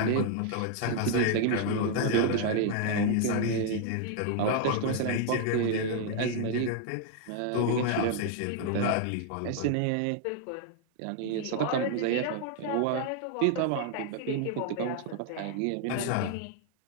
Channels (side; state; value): both; different; correlation 0.00